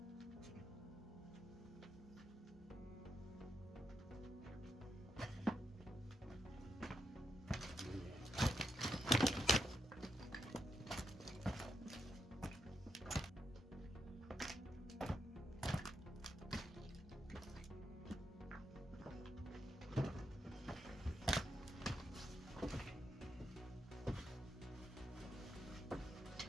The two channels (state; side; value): normal; both; correlation 0.81